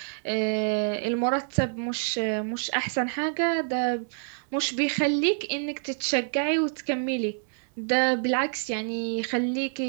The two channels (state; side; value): silent; left; 60 dB below the other